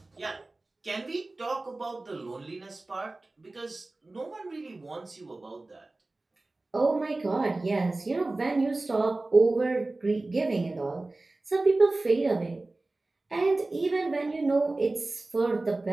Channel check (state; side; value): quieter; left; 3.1 dB